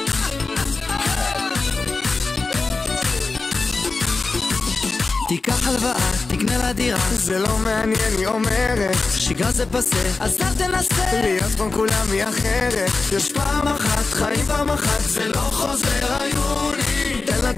תיקח הלוואה, תקנה לה דירה, זה לא מעניין, היא אומרת שגרה זה פסה, אז אל תנסה להיות כמו כולם היא אחרת. יש פעם אחת, חיים פעם אחת, זה לא חוזר היוני. תן לה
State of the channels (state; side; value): quieter; right; 3.9 dB